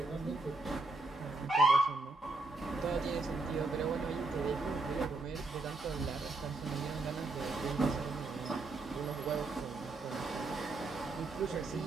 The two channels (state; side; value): quieter; left; 3.3 dB